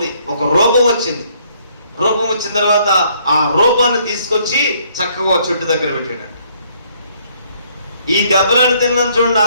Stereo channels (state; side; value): inverted; both; correlation -0.66